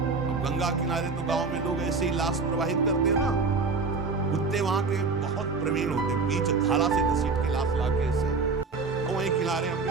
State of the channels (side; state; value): left; quieter; 4.4 dB